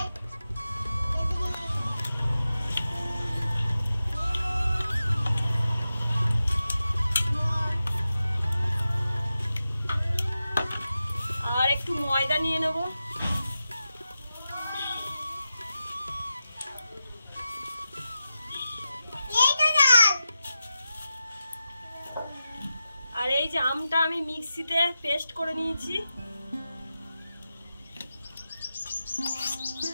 আর একটু ময়দা নিয়ে নেব। আর এই যে আমটা আমি মিক্সিতে পেস্ট করে নিয়েছি।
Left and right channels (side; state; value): both; inverted; correlation -0.91